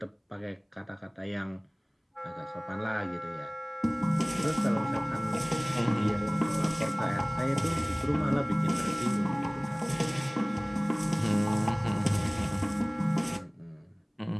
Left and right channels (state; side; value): identical; both; correlation 1.00